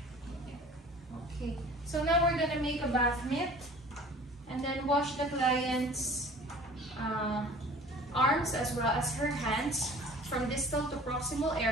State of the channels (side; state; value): both; normal; correlation 0.46